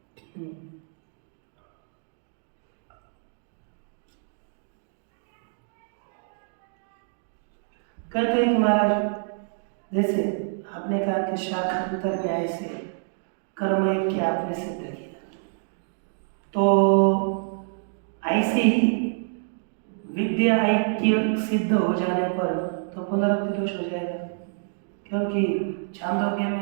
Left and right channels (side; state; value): left; silent; digital silence